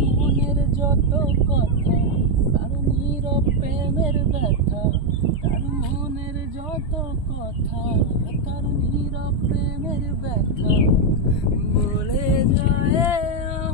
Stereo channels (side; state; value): right; late; 2.8 ms